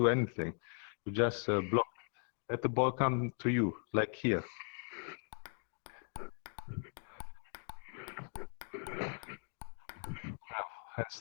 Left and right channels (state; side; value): silent; right; 52 dB below the other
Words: anything. You just block. Let the ball come to you, like here. And